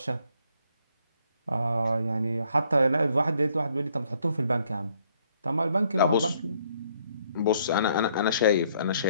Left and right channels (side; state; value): both; inverted; correlation -0.68